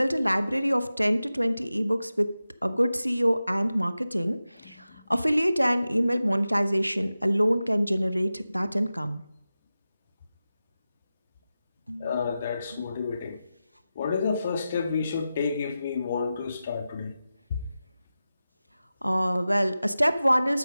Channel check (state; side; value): inverted; both; correlation -0.94